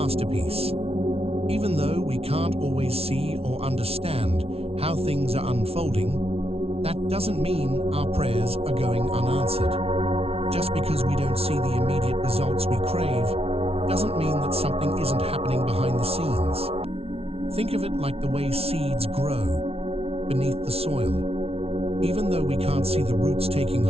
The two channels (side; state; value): left; late; 0.29 ms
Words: Even though we can't always see or understand how things are unfolding, that doesn't mean our prayers are going unanswered. Just because we don't see the immediate results we crave doesn't mean that something isn't happening behind the scenes. Think of it like the way seeds grow beneath the soil. Even though we can't see the roots taking